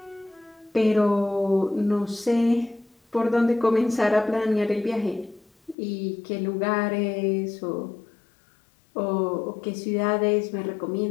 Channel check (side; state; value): right; drops out; at 5.8 s